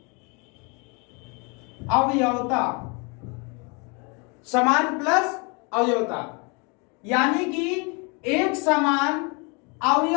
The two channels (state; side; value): quieter; right; 31.9 dB